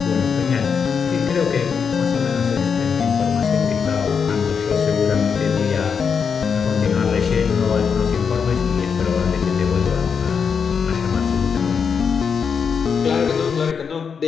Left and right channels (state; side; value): quieter; right; 6.3 dB